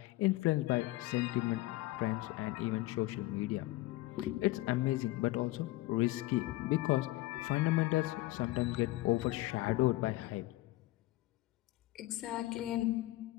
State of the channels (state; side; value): quieter; right; 18.5 dB